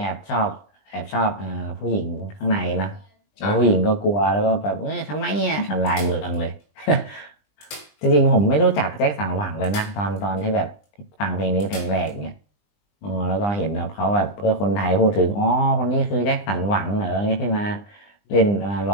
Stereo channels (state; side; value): late; right; 20 ms